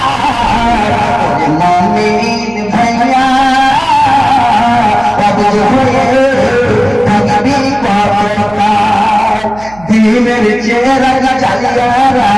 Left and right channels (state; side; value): noise; right; hum, 21 dB below the sound